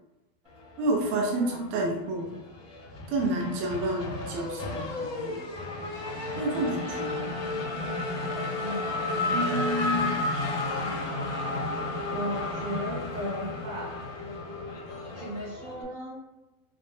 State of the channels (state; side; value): late; left; 12 ms